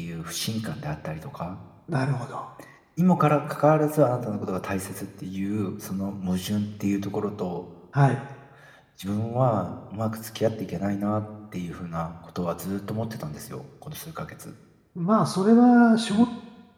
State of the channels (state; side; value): identical; both; correlation 1.00